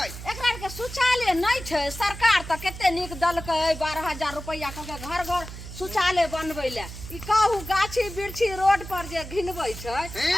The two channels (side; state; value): right; noise; hum, 11 dB below the sound